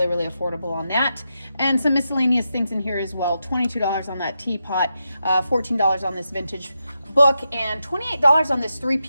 really affordable on that. And some miscellaneous things in here as well. $22 on that teapot, $14 on this vintage book, and $28 on this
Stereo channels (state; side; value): inverted; both; correlation -0.87